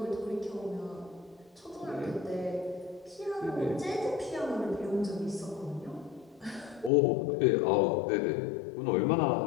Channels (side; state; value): right; drops out; at 6.9 s